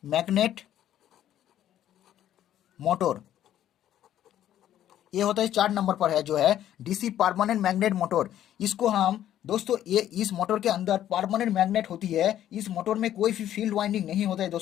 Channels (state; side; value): quieter; right; 11.6 dB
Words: magnet motor, ये होता है 4 नंबर पर है जो है डीसी परमानेंट मैग्नेट मोटर। इसको हम दोस्तों, ये इस मोटर के अंदर परमानेंट मैग्नेट होती है। इस मोटर में कोई भी फील्ड वाइंडिंग नहीं होता है